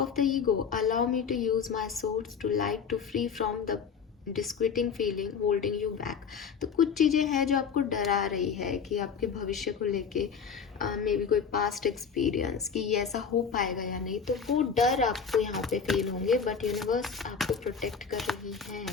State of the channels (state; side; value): quieter; right; 6.3 dB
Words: the ego, allow me to use my source to light to free from the disquieting feeling holding you back. तो कुछ चीज़ें हैं जो आपको डरा रही है कि आपके भविष्य को लेके मे बी कोई पास्ट एक्सपीरियंस कि ये ऐसा हो पाएगा या नहीं, तो वो डर आपको यहाँ पे फील होंगे, बट यूनिवर्स आपको प्रोटेक्ट कर रही है।